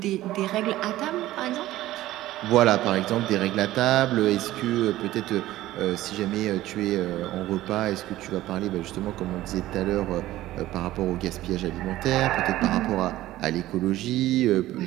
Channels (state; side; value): quieter; left; 15.5 dB